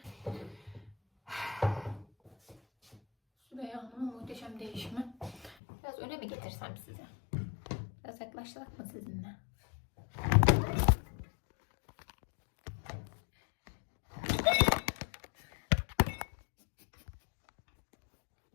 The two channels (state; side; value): drops out; right; at 5.6 s